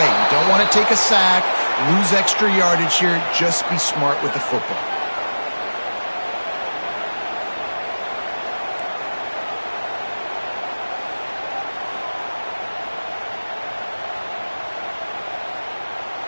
You don't want to take a sack, lose extra yardage here. Just be smart with the football.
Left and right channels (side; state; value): both; inverted; correlation -1.00